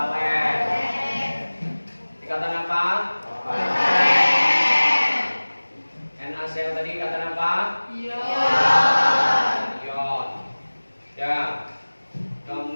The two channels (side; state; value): both; inverted; correlation -1.00